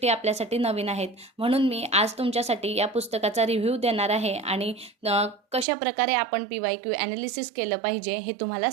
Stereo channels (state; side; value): drops out; left; at 5.7 s